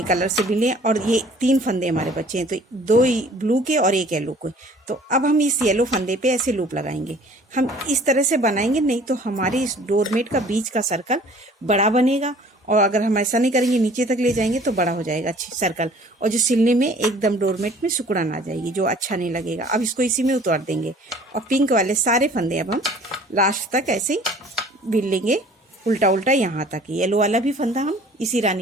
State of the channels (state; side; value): normal; both; correlation 0.51